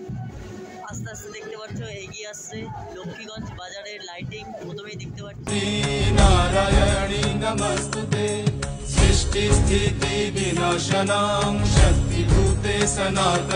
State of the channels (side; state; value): both; identical; correlation 1.00